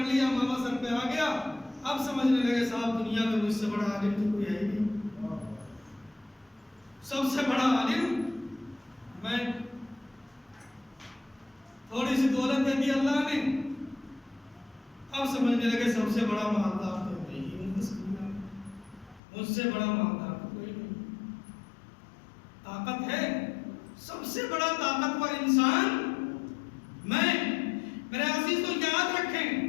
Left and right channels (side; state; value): right; drops out; at 19.2 s